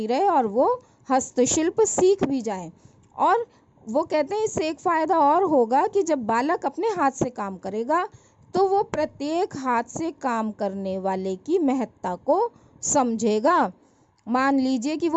रहे और वो हस्तशिल्प सीख भी जाएं। और वो कहते हैं इससे एक फ़ायदा और होगा कि जब बालक अपने हाथ से काम करेगा तो वो प्रत्येक हाथ से काम करने वाले की महत्ता को समझेगा। मान लीजिए कि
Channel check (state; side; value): identical; both; correlation 1.00